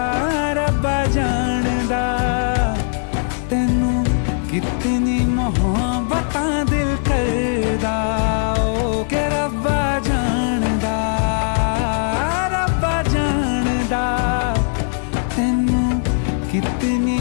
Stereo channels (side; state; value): right; silent; digital silence